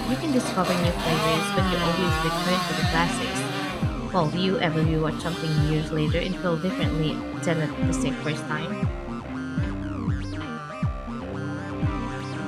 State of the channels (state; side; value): identical; both; correlation 1.00